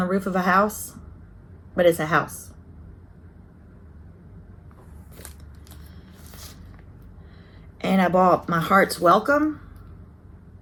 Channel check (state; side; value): identical; both; correlation 1.00